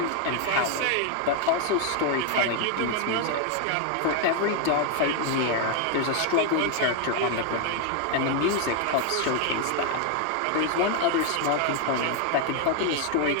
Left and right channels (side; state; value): both; different; correlation 0.00